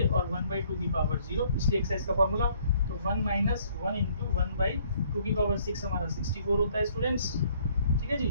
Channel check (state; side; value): inverted; both; correlation -0.63